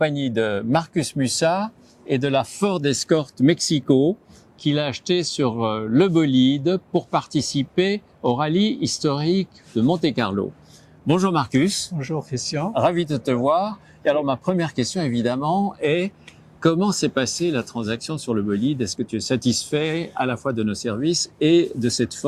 de Marcus Mussat et de la Ford Escort Mexico qu'il a acheté sur le bolide pour participer au rallye historique de Monte-Carlo. Bonjour Marcus. Bonjour Christian. Ravi de te voir. Et alors ma première question évidemment est comment s'est passée la transaction sur le bolide? Est-ce que tu es satisfait à la fois de nos services et de cette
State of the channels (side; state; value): both; identical; correlation 1.00